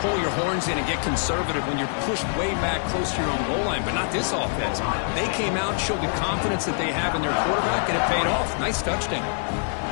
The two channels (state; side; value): silent; right; 62 dB below the other